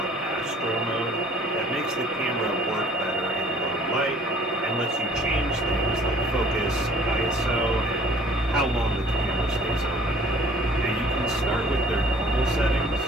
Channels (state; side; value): normal; both; correlation 0.54